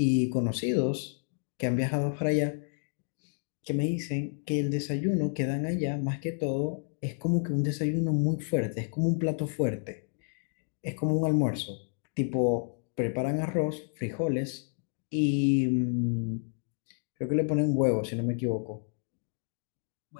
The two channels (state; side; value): silent; right; 58 dB below the other